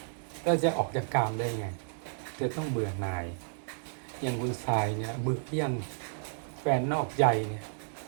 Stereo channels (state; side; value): silent; left; 56 dB below the other